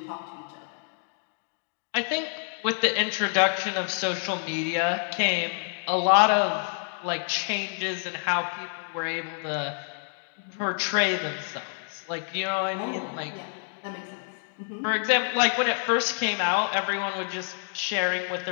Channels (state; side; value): silent; right; 60 dB below the other